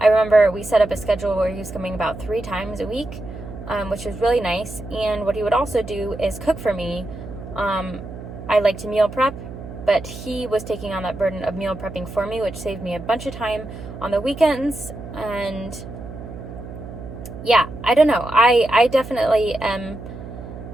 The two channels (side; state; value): right; noise; hum, 12 dB below the sound